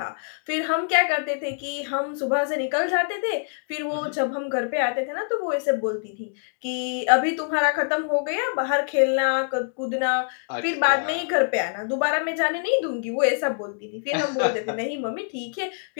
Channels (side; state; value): right; silent; digital silence